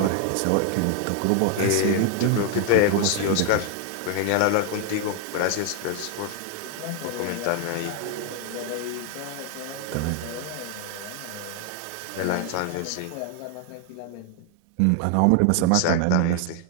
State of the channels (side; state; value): both; different; correlation 0.00